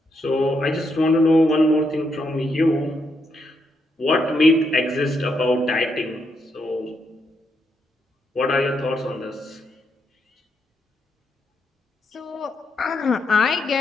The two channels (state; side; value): normal; both; correlation 0.79